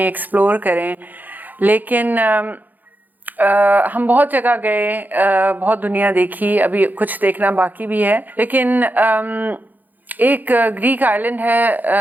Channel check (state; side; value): late; left; 0.084 ms